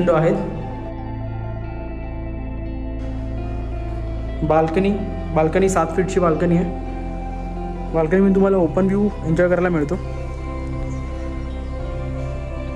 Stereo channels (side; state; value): both; identical; correlation 1.00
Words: आहेत. बाल्कनी 7 फीटची बाल्कनी आहे. बाल्कनीमध्ये तुम्हाला ओपन व्ह्यू एन्जॉय करायला मिळतो.